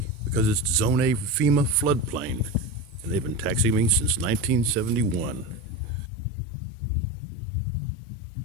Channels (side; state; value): right; drops out; at 6.1 s